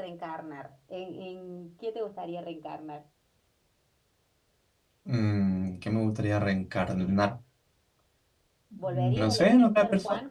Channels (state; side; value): identical; both; correlation 1.00